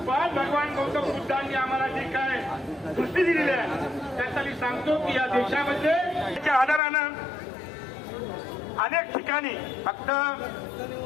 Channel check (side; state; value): right; drops out; at 6.8 s